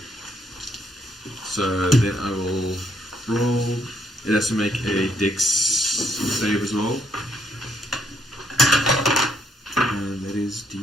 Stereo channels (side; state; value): both; normal; correlation 0.74